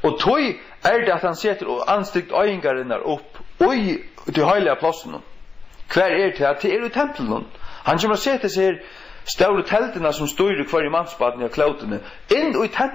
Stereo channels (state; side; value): quieter; right; 4.6 dB